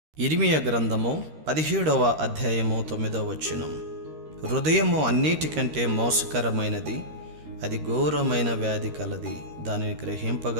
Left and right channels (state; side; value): late; left; 13 ms